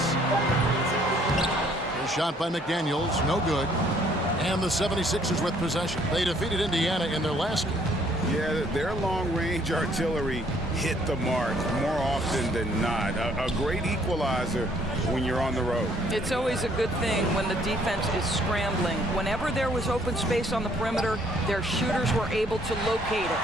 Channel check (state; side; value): normal; both; correlation 0.63